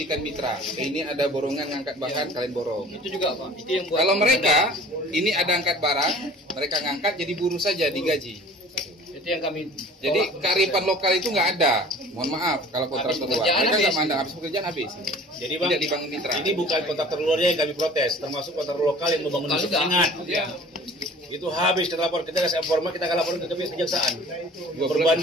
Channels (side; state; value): both; normal; correlation 0.46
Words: mitra. Ini ada borongan ngangkat bahan, kalian borong. Itu juga Pak. Itu yang buat. Kalau mereka ini ada angkat barang, mereka ngangkat jadi buruh saja digaji. Itu yang kami. Jadi kearifan lokal itu nggak ada. Mohon maaf kalau kontraktor luar. Mereka nggak mandang habis pekerjaan habis. Jadi Bang, tidak dibangun mitra. Ini bukan kontraktor luarnya yang kami protes, termasuk kontraktor lokal yang membangun penyengat. Ya. Itu habis kita lapor, kita kasih informa, kita akan laporin ke kejaksaan.